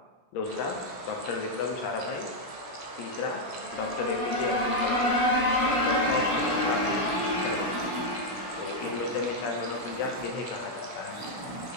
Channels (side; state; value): right; late; 16 ms